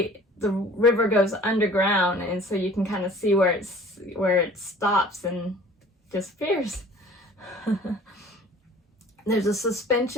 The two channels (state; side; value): normal; both; correlation 0.49